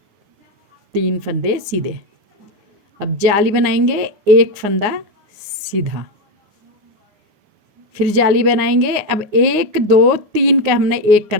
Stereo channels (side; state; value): left; late; 9.6 ms